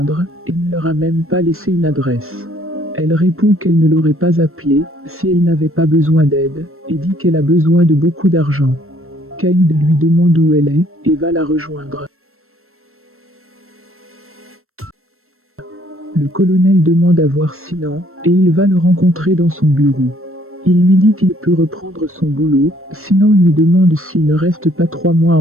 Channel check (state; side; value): late; left; 0.62 ms